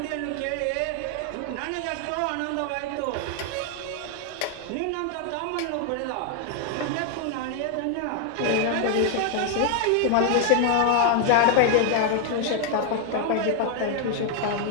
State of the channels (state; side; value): different; both; correlation 0.00